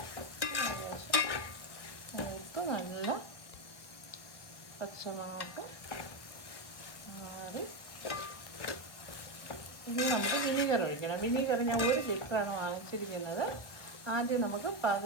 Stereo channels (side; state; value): right; late; 1.0 ms